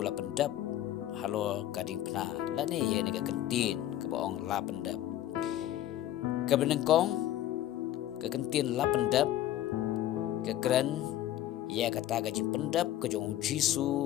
la pendap halo kading pna lane ye ne ka kantin ke baong la pendap ke benengkong ke kantin la pendap ke kran ya kata gajin pendap ke jong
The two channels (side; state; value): right; quieter; 12.9 dB